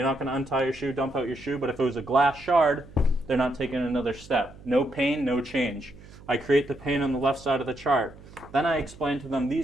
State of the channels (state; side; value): noise; right; hum, 20 dB below the sound